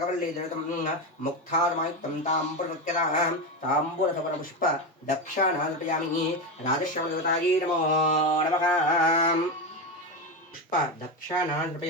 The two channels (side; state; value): both; normal; correlation 0.14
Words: ధృతం ముక్తారమాయుక్తం తాంబూలముఖ్యతాం తాంబూలసవరపుష్ప దక్షాణా నృపయామి. రాజశ్యామదేవతాయే నమో నమః. పుష్ప దక్షాణా